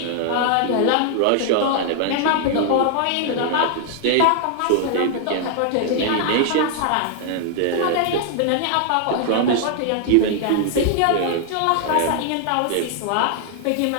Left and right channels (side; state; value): both; different; correlation 0.00